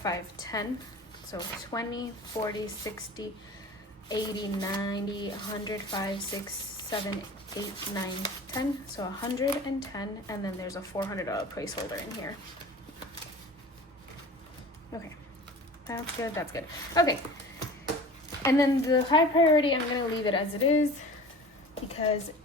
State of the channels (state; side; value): normal; both; correlation 0.40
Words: So 20, 40, 60, 80, 90, 100, 5, 6, 7, 8, 9, 10. So 110, and then there's a $400 placeholder in here. Okay, that's good, that's good. Okay, and then the high priority, I'm gonna leave it as it is because